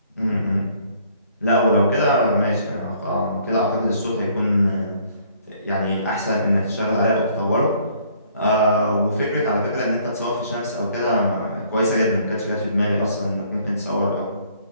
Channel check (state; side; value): inverted; both; correlation -0.61